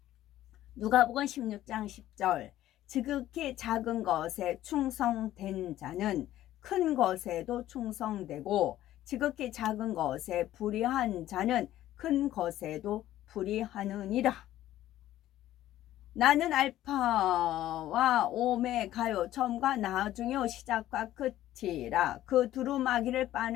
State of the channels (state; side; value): quieter; right; 13.7 dB